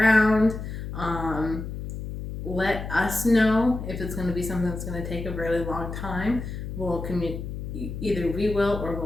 Let us know if it's going to be something that's going to take a really long time. We'll either we will or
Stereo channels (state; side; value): noise; left; hum, 7 dB below the sound